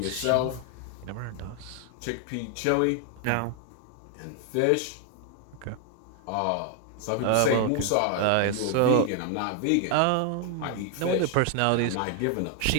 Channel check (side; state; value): both; different; correlation 0.01